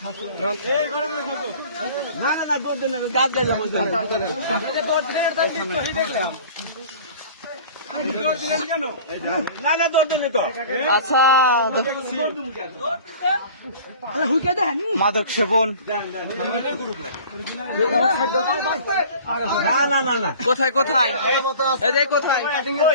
খাস না না না দৌড় দেন গাছ গাছ না না দৌড় দেন তো আচ্ছা মাদক সেবন না না না না কোথায় কোথায় এই কোথায়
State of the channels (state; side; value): inverted; both; correlation -0.44